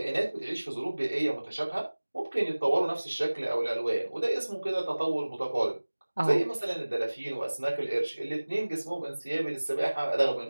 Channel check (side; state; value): both; inverted; correlation -1.00